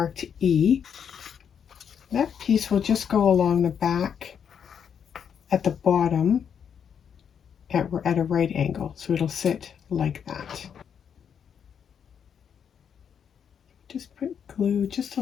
E. That piece will just go along the back at the bottom at a right angle. So it'll sit like that. Just put glue just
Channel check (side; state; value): right; quieter; 7.7 dB